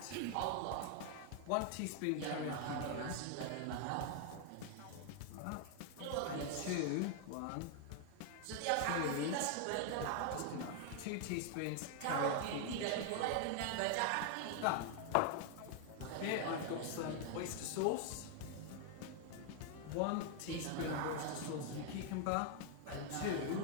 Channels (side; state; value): both; different; correlation 0.00